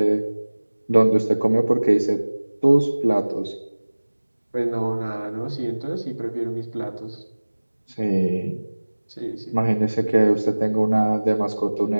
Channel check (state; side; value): inverted; both; correlation -1.00